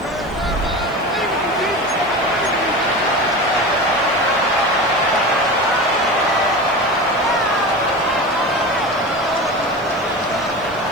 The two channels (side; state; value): right; noise; hiss, 28 dB below the sound